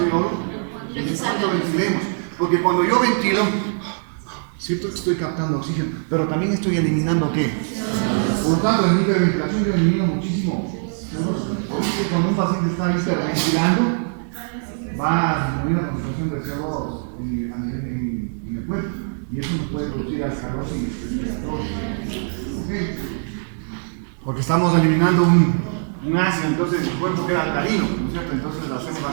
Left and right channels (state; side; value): silent; left; digital silence